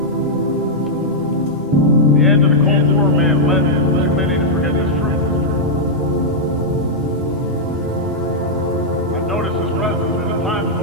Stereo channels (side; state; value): both; normal; correlation -0.06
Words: The end of the Cold War may have led too many to forget this truth. I've noticed as president that at times